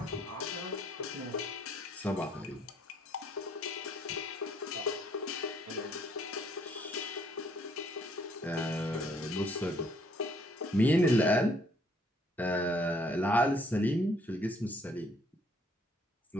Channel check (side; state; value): both; normal; correlation 0.65